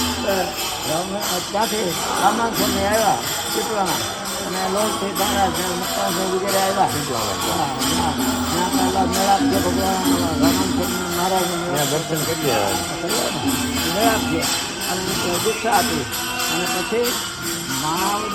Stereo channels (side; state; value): both; identical; correlation 1.00